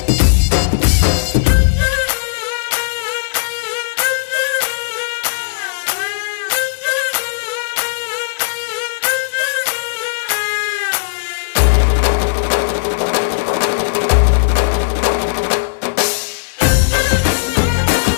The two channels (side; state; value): right; quieter; 34.4 dB